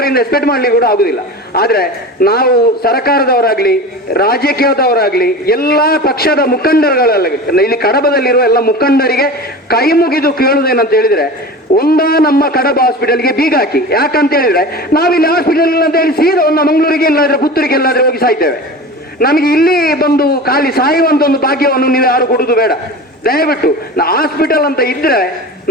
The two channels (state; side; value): normal; both; correlation 0.32